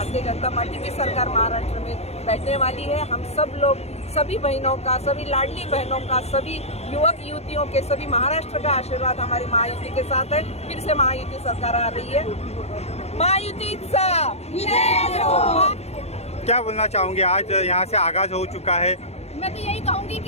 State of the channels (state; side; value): late; right; 0.31 ms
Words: जनता पार्टी की सरकार महाराष्ट्र में बैठने वाली है। हम सब लोग, सभी बहनों का, सभी लाडली बहनों का, सभी युवक युवतियों के, सभी महाराष्ट्र का आशीर्वाद हमारी महायुति के साथ है। फिर से महायुति सरकार आ रही है। महायुतीचा क्या बोलना चाहूँगी, आज यहाँ से आगाज हो चुका है। मैं तो यही कहूँगी